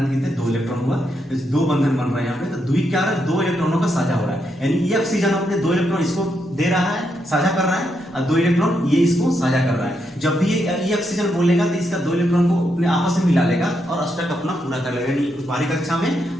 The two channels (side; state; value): both; normal; correlation 0.80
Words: के लिए 2 इलेक्ट्रॉन हुआ, 2 बंधन बन रहा है यहाँ पे। तो द्विक क्या है? 2 इलेक्ट्रॉनों का साझा हो रहा है। यानी ये ऑक्सीजन अपने 2 इलेक्ट्रॉन इसको दे रहा है, साझा कर रहा है, और 2 इलेक्ट्रॉन ये इसको साझा कर रहा है। जब भी ये ऑक्सीजन बोलेगा तो इसका 2 इलेक्ट्रॉन को अपने आपस में मिला लेगा और अष्टक अपना पूरा कर लेगा। यानी बाहरी कक्षा में